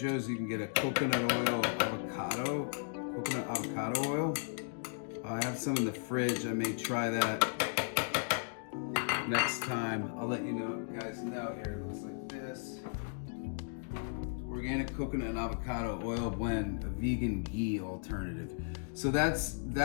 you can get a coconut avocado oil. I have some in the fridge. I may try that next time. I'll let you guys know. Here it looks like this. Organic coconut and avocado oil blend, a vegan ghee alternative. So that's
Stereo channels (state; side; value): silent; right; digital silence